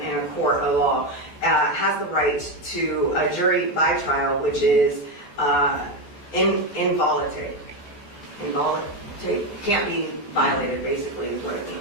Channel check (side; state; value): right; late; 14 ms